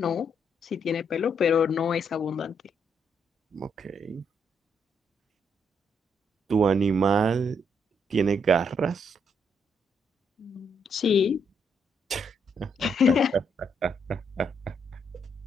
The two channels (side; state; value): both; normal; correlation 0.75